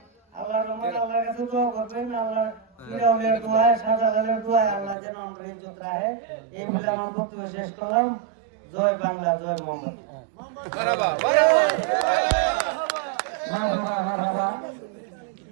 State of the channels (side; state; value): left; drops out; at 5.0 s